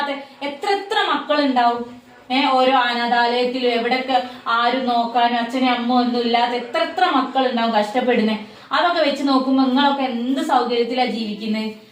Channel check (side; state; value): both; identical; correlation 1.00